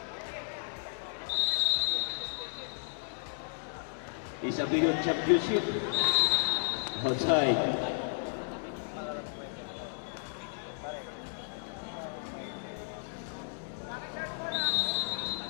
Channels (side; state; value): right; silent; digital silence